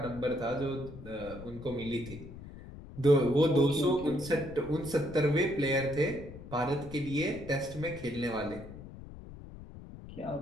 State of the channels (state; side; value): noise; left; rumble, 14 dB below the sound